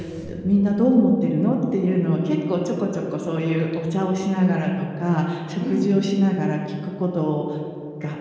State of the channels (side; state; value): both; identical; correlation 1.00